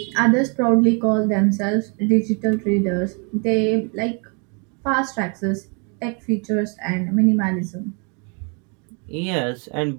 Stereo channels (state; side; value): quieter; left; 35.2 dB